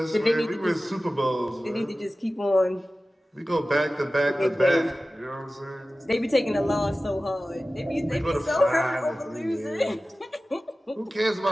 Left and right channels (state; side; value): normal; both; correlation 0.96